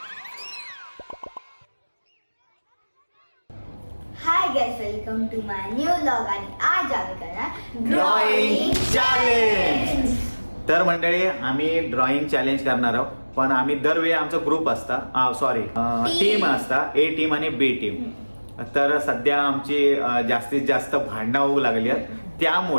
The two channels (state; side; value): inverted; both; correlation -1.00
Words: Hi guys, welcome to my new vlog आणि आज आम्ही करणार ड्रॉइंग चॅलेंज. तर मंडळी आम्ही ड्रॉइंग चॅलेंज करणार आहोत. पण आम्ही दरवेळी आमचा ग्रुप असता सॉरी टीम असता ए टीम आणि बी टीम. तर सध्या आमची जास्तीत जास्त भांडणं होऊ लागली आहेत.